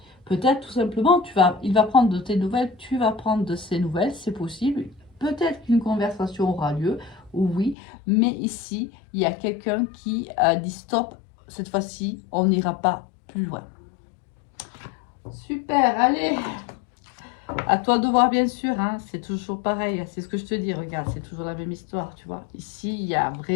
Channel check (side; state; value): right; drops out; at 7.8 s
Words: Peut-être tout simplement, il va prendre de tes nouvelles, tu vas prendre de ses nouvelles, c'est possible. Peut-être qu'une conversation aura lieu, oui, mais ici, il y a quelqu'un qui a dit stop, cette fois-ci, on n'ira pas plus loin. Super, allez, à toi de voir bien sûr, hein, c'est toujours pareil, c'est ce que je te dis, regarde, c'est toujours la même histoire, tu vois. Ici, il y a